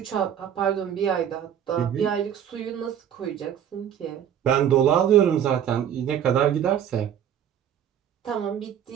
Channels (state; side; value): quieter; left; 9.5 dB